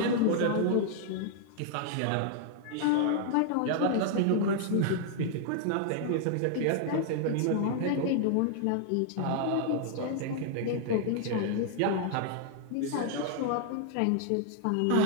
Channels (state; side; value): different; both; correlation -0.01